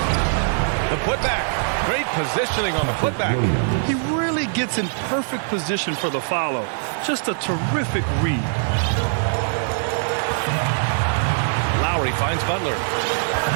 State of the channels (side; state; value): left; silent; 61 dB below the other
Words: The putback. Great positioning on the putback. He really gets in perfect position for the follow. Just a terrific read. Lowry finds Butler.